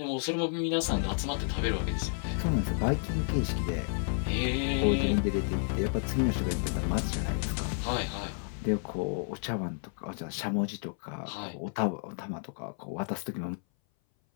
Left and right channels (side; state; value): right; silent; 57 dB below the other